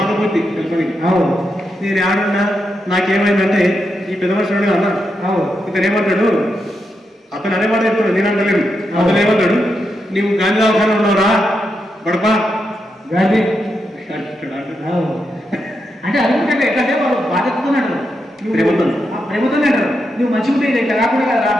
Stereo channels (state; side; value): normal; both; correlation 0.84